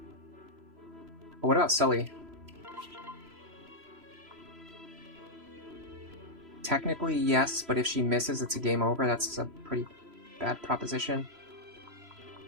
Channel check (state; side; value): late; left; 3.0 ms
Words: But what about Sully? Technically, yes, but if she misses, it's a game over. That's a pretty bad proposition.